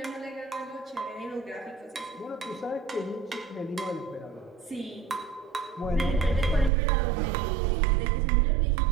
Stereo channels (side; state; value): left; drops out; at 6.7 s